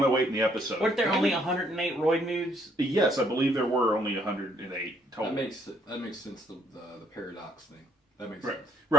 in the episode. Weren't there only 108 Roid Moods? Yes, I believe there were only 108 total. That makes sense, the paradox thing. That makes Right. sense.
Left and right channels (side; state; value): both; normal; correlation 0.68